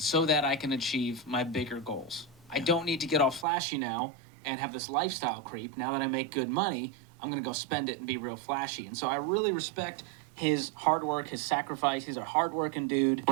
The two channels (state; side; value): drops out; left; at 3.5 s